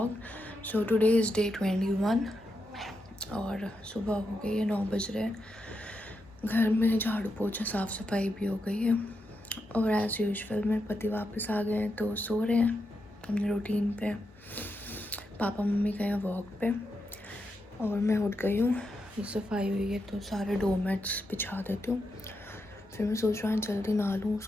So today is day 21 और सुबह हो गई है 9 बज रहे हैं। घर में झाड़ू पोछा साफ़ सफाई भी हो गई है और एज़ यूजुअल मेरे पति वापस आ गए हैं तो सो रहे हैं अपने रूटीन पे। पापा मम्मी गए हैं वॉक पे और मैं उठ गई हूँ। सफाई हुई है तो सारे डोरमैट्स बिछा देती हूँ। फिर मैं सोच रहा हूँ जल्दी नहा लूँ,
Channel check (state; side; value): normal; both; correlation 0.85